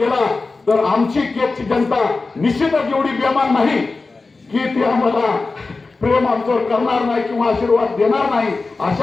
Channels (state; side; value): quieter; right; 3.8 dB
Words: तर आमची केजची जनता निश्चितच एवढी बेमान नाही की ती आम्हाला प्रेम आमच्यावर करणार नाही किंवा आशीर्वाद देणार नाही.